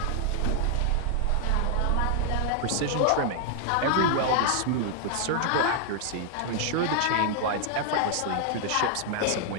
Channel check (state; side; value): different; both; correlation 0.00